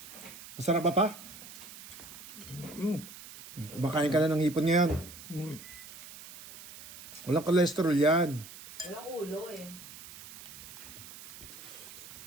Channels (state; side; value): noise; right; hiss, 15 dB below the sound